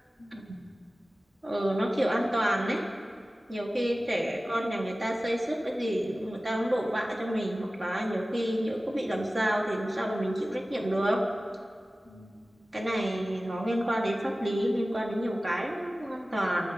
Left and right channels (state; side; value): normal; both; correlation 0.96